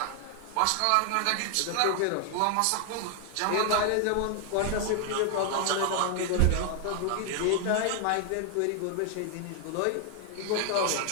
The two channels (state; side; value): different; both; correlation 0.00